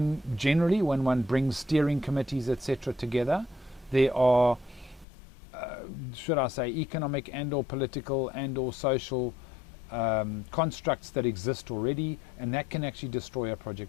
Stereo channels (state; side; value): drops out; right; at 5.1 s